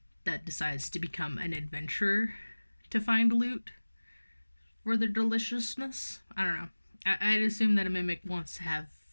that decides to become an adventurer to find loot for their deliciousness. I don't know. I'd assume that a mimic wants to have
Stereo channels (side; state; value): both; inverted; correlation -1.00